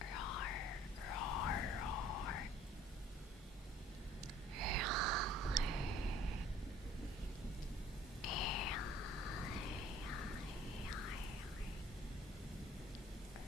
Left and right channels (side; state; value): both; normal; correlation 0.54